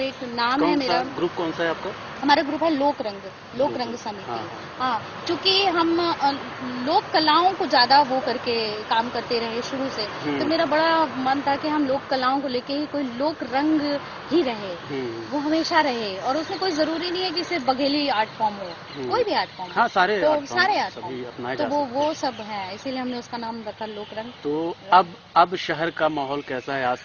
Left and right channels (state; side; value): identical; both; correlation 1.00